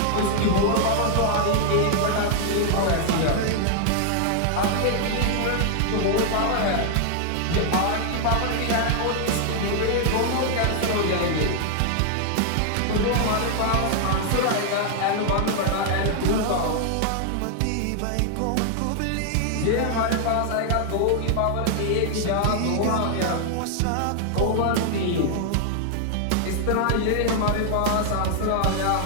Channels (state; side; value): different; both; correlation 0.00